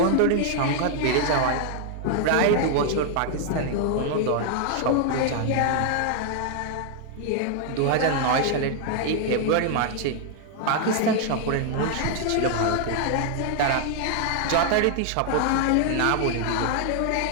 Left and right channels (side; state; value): both; different; correlation 0.00